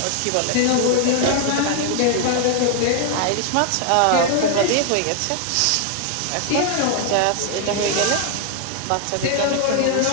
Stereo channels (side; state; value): both; different; correlation 0.00